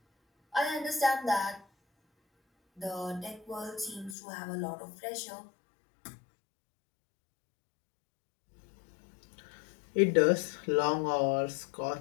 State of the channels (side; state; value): right; drops out; at 4.2 s